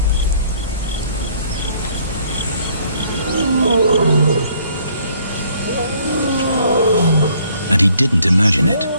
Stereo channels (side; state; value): both; inverted; correlation -0.63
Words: And he didn't imagine it.